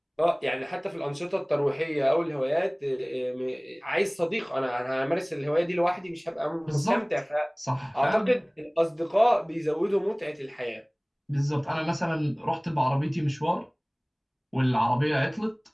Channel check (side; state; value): both; identical; correlation 1.00